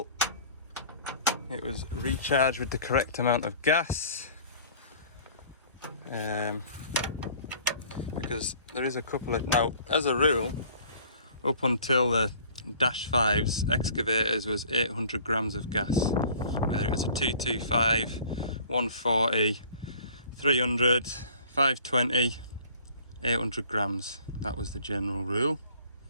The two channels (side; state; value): both; inverted; correlation -0.50